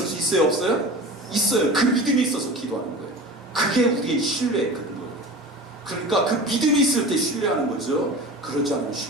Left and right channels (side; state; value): both; normal; correlation 0.34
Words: 수 있어요, 없어요? 있어요. 그 믿음이 있어서 기도하는 거예요. 그게 우리의 신뢰의 근거예요. 그러니까 그 믿음이 있을 때 신뢰하는 거죠. 그러지 않으면